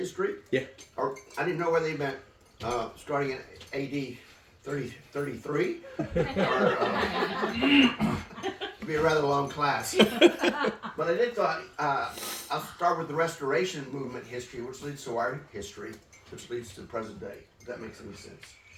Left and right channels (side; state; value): both; identical; correlation 1.00